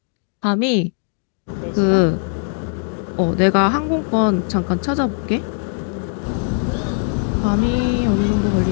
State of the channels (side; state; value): right; silent; digital silence